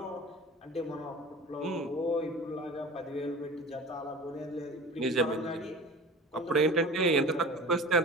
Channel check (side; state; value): both; normal; correlation 0.38